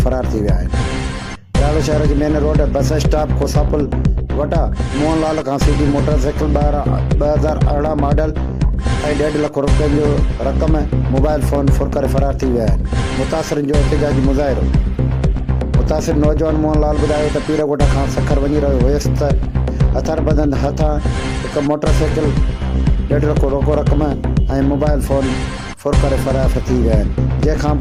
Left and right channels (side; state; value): both; identical; correlation 1.00